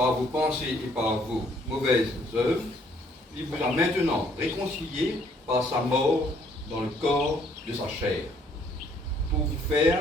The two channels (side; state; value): both; normal; correlation 0.64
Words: vos pensées et par vos mauvaises œuvres, il vous a maintenant réconciliés par sa mort dans le corps de sa chair, pour vous